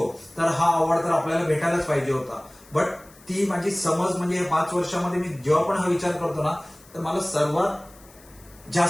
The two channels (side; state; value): left; noise; hiss, 25 dB below the sound